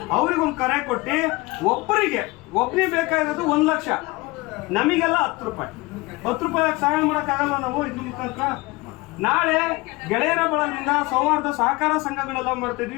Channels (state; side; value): quieter; right; 23.0 dB